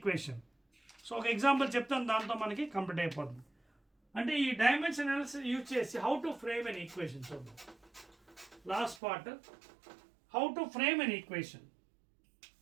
So ఒక example చెప్తాను, దాంతో మనకి complete అయిపోతుంది. అంటే ఈ dimension analysis use చేసి how to frame an equation చూద్దాం. Last part, how to frame an equation.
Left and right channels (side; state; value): left; drops out; at 9.0 s